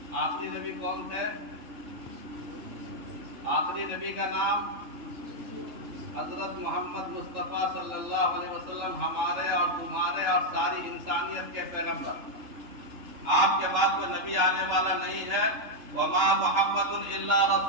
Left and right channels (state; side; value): late; left; 3.1 ms